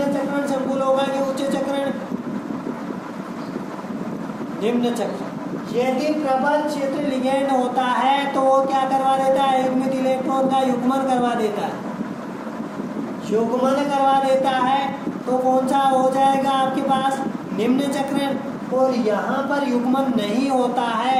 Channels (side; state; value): both; identical; correlation 1.00